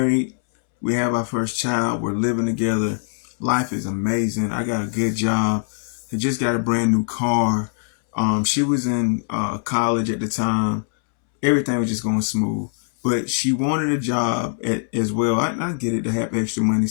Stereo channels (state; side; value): silent; right; 64 dB below the other